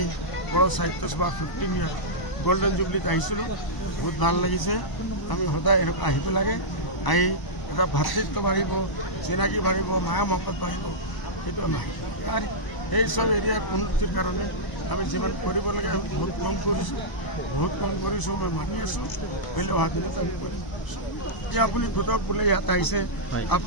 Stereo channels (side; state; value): right; late; 1.0 ms